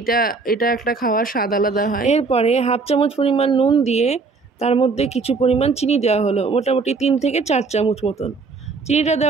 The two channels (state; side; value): quieter; left; 4.4 dB